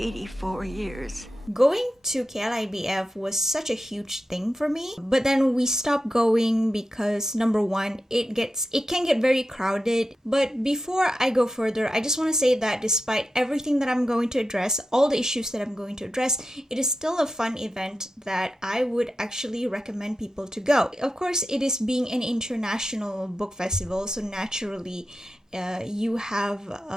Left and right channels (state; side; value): normal; both; correlation 0.90